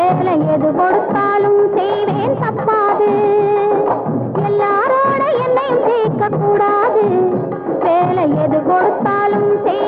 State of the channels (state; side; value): identical; both; correlation 1.00